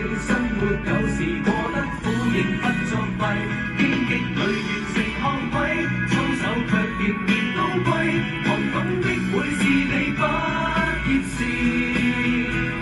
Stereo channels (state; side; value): identical; both; correlation 1.00